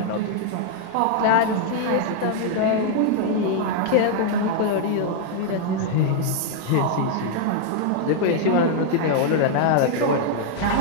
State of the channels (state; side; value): different; both; correlation 0.00